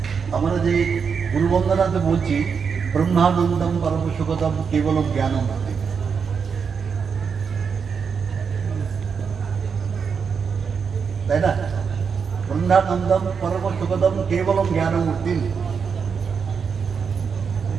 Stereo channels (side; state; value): left; quieter; 6.1 dB